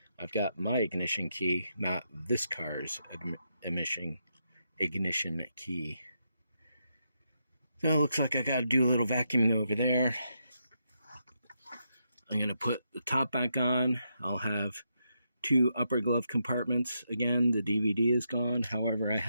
I've got my ignition key, not this car's ignition key. So it looks like I got to do a little vacuuming over there. I'm going to put the top back on. I'll have two upper glove compartments. Again, the DVD is gone. However, I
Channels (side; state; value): both; inverted; correlation -0.81